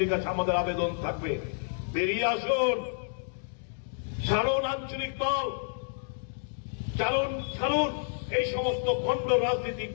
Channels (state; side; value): silent; right; digital silence